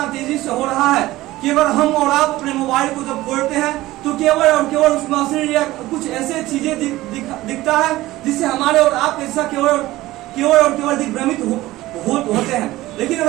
तेजी से हो रहा है कि अगर हम और आप अपने मोबाइल को जब खोलते हैं तो केवल और केवल उसमें अश्लील या कुछ ऐसे चीजें दिखता है जिससे हमारे और आपके हिस्सा केवल दिग्भ्रमित होते हैं। लेकिन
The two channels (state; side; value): quieter; left; 17.3 dB